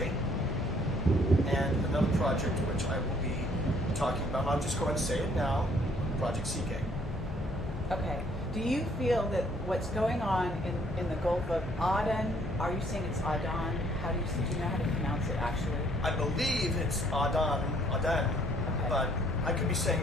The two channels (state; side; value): normal; both; correlation 0.63